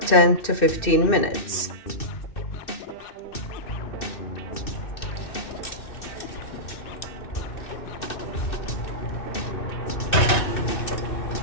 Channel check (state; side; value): late; right; 2.6 ms